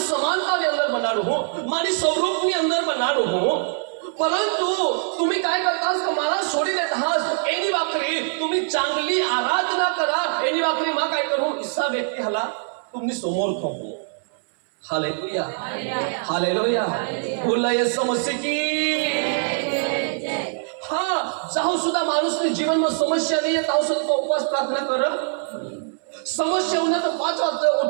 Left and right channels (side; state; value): left; silent; 63 dB below the other